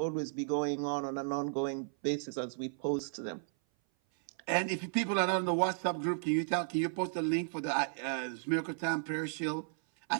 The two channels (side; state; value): left; silent; 55 dB below the other